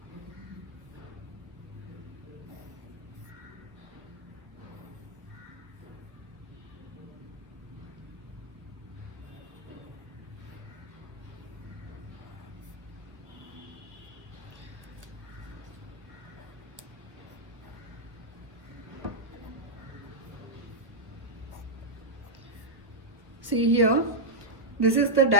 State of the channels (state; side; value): late; left; 1.4 ms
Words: See here, this is the